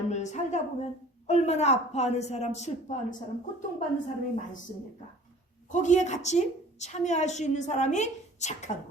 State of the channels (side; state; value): both; normal; correlation 0.49